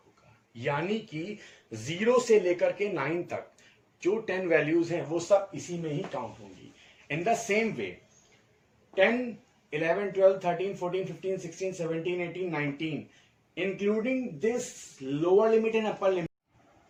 होगा। यानी कि 0 से लेकर के 9 तक जो 10 वैल्यूज हैं वो सब इसी में ही काउंट होंगी। इन the same way 10, 11, 12, 13, 14, 15, 16, 17, 18, 19, including this lower limit and upper limit.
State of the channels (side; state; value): both; identical; correlation 1.00